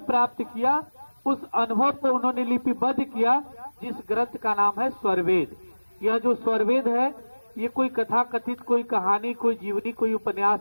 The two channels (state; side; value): inverted; both; correlation -1.00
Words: प्राप्त किया, उस अनुभव को उन्होंने लिपिबद्ध किया, जिस ग्रंथ का नाम है स्वरवेद। यह जो स्वरवेद है, ये कोई कथा कथित, कोई कहानी, कोई जीवनी, कोई